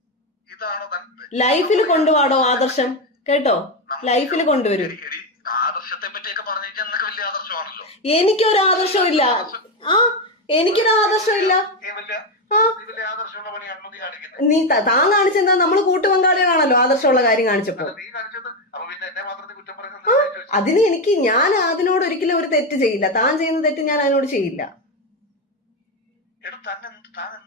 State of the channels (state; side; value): normal; both; correlation 0.10